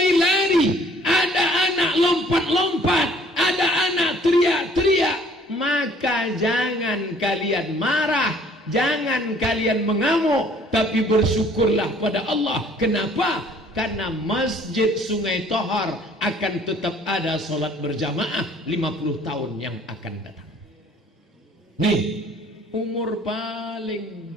ada anak lompat-lompat, ada anak teriak-teriak, maka jangan kalian marah, jangan kalian mengamuk, tapi bersyukurlah pada Allah. Kenapa? Karena Masjid Sungai Tohor akan tetap ada solat berjamaah 50 tahun yang akan datang. Nih, umur paling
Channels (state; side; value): normal; both; correlation 0.57